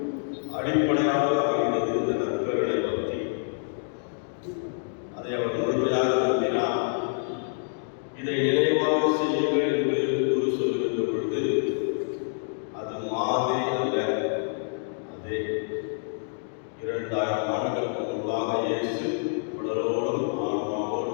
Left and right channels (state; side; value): silent; right; digital silence